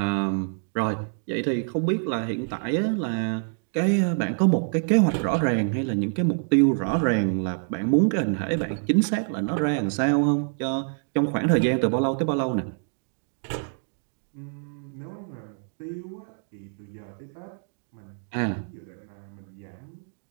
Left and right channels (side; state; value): left; silent; 57 dB below the other